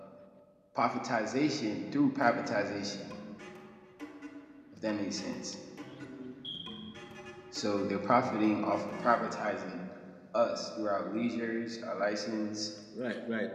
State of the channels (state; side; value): identical; both; correlation 1.00